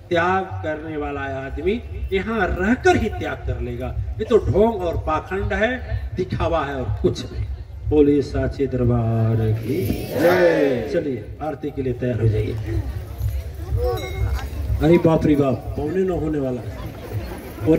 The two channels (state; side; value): identical; both; correlation 1.00